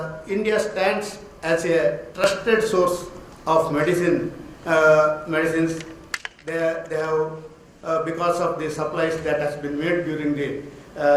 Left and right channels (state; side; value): identical; both; correlation 1.00